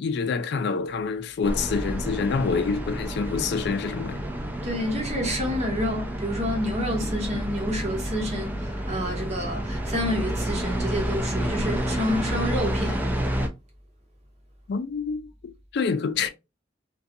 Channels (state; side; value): normal; both; correlation 0.58